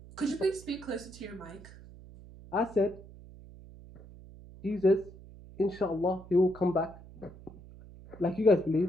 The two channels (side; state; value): right; noise; hum, 18 dB below the sound